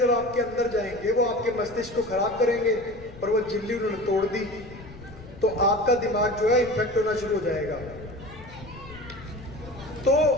आपके अंदर जाएंगे वो आपके मस्तिष्क को खराब करेंगे, और वो झिल्ली उन्होंने तोड़ दी तो आपका दिमाग जो है इन्फेक्ट होना शुरू हो जाएगा। तो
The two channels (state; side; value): noise; left; rumble, 17 dB below the sound